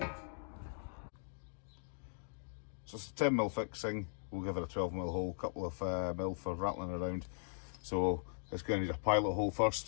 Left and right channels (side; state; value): right; silent; digital silence